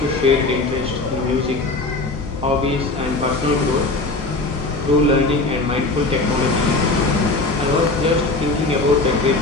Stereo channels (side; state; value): right; quieter; 3.2 dB